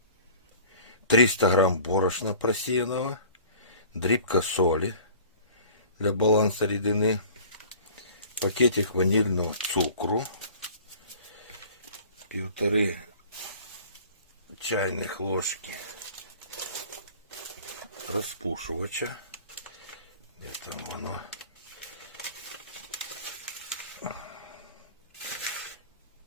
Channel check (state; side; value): inverted; both; correlation -0.46